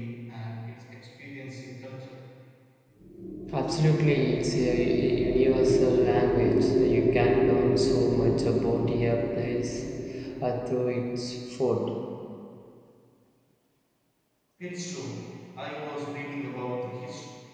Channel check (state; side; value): identical; both; correlation 1.00